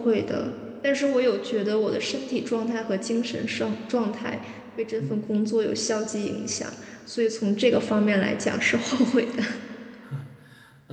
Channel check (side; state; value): both; identical; correlation 1.00